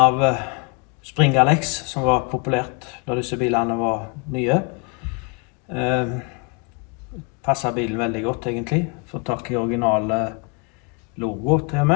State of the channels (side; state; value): right; quieter; 32.5 dB